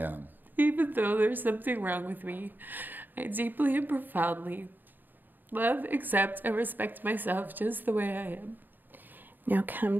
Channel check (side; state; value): left; late; 0.090 ms